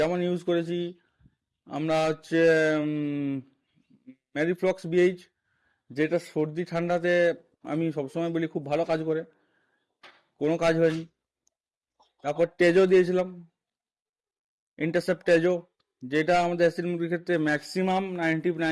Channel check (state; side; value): identical; both; correlation 1.00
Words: ইউজ করেছি আমরা হচ্ছে ম্যারিফ্লক্স বিএইচ, যেটা সর্দি ঠান্ডাতে আমি সবসময় বলি খুব ভালো কাজ করে, কোনো কাজ হয়নি। তারপর টেজো দিয়েছিলাম, ইন্টারসেপ্ট টেজো, যেটা আমাদের অ্যাসিড মুরগির ক্ষেত্রে ম্যাক্সিমাম